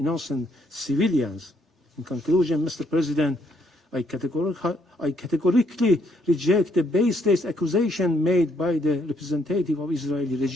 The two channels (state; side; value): normal; both; correlation 0.71